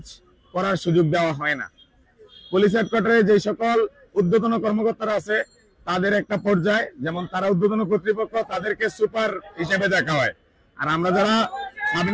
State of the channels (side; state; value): both; identical; correlation 1.00